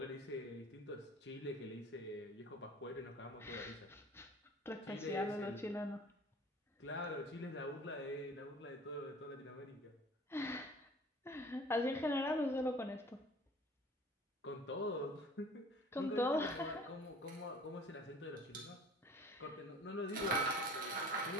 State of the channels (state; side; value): normal; both; correlation 0.47